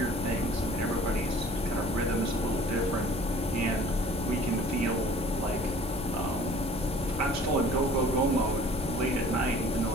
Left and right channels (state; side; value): normal; both; correlation 0.50